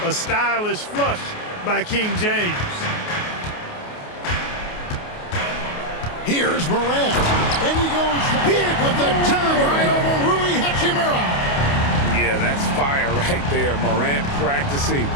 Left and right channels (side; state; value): right; late; 28 ms